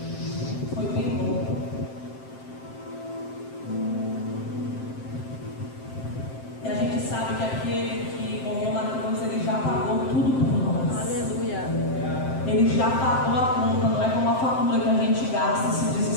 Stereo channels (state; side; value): late; right; 7.6 ms